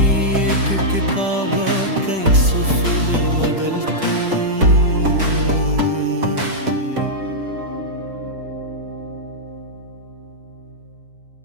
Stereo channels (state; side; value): late; left; 5.1 ms